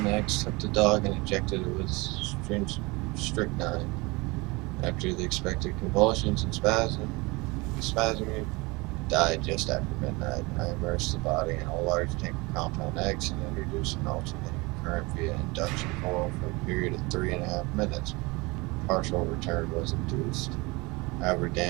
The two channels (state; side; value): quieter; left; 25.0 dB